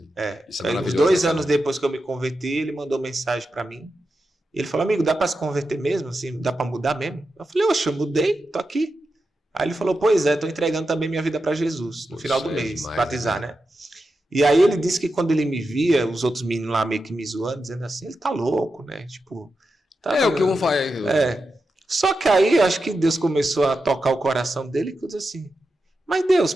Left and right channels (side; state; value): both; normal; correlation 0.89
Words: Isso é maravilhoso. 2 anos depois que eu me converti, ele mandou mensagem para mim. Ele falou, amigo, dá para se converter mesmo? Assim, dá para mudar mesmo? Eu falei, oxe, eu mudei, tô aqui. Aí ele falou, pois é, tô entregando também minha vida para Jesus no final do mês, batizar, né? E aí ele disse que quando ele me via, os outros meninos lá meio que me zoando, dizendo assim, ele tá louco, né? Tipo... Tá, o que vão fazer. Só que aí acho que Deus começou a tocar o coração dele e disse assim, mas Deus,